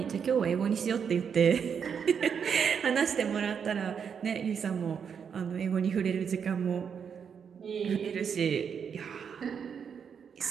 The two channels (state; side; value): quieter; left; 7.1 dB